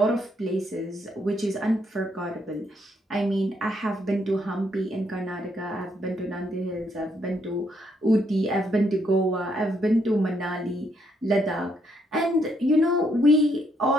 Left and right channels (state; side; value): normal; both; correlation 0.74